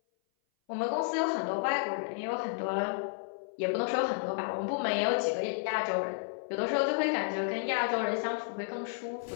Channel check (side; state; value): right; silent; 56 dB below the other